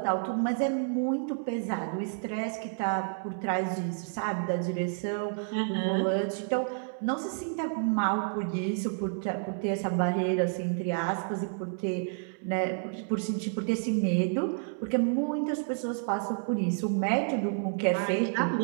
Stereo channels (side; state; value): left; silent; 58 dB below the other